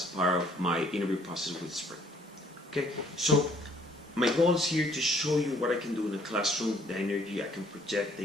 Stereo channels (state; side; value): normal; both; correlation 0.61